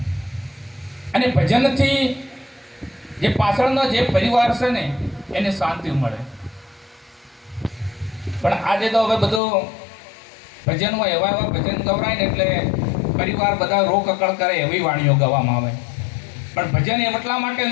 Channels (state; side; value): drops out; right; at 9.4 s